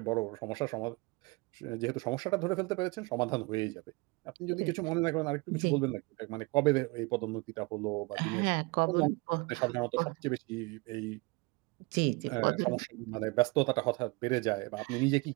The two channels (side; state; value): left; quieter; 26.2 dB